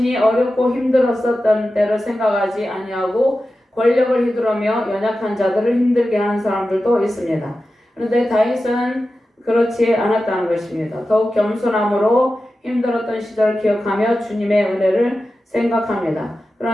어렵고 힘들었었던 때를 생각하지 아니하고 권력을 휘두르며 연약한 자들을 힘들게 하는 사람들도 있습니다. 그런데 다윗은 그렇지 않았다는 것입니다. 더욱 겸손함으로 힘들었던 시절을 기억하며 주님의 은혜를 생각합니다.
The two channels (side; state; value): both; normal; correlation 0.93